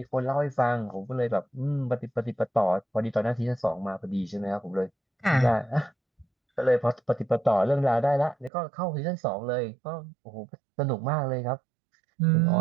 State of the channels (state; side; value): drops out; left; at 8.5 s